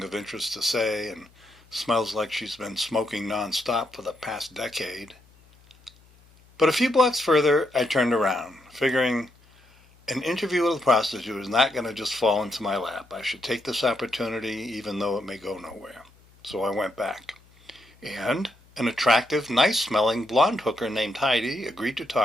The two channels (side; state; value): left; noise; hum, 29 dB below the sound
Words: of interest to say and smells like she's been smoking nonstop for the past decade. But a few blocks further, I turned around, figuring an interview with a prostitute is not going to just fall into my lap. I should take this opportunity even though it may go nowhere. So I went back. And an attractive, nice-smelling blonde hooker named Heidi agreed to